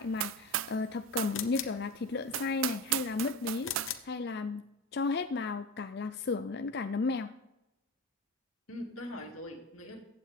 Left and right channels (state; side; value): normal; both; correlation 0.27